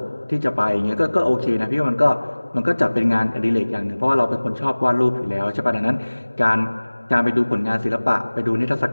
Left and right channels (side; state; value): both; inverted; correlation -1.00